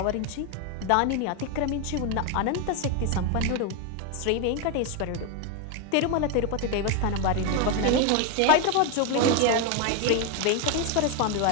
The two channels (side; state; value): both; different; correlation 0.01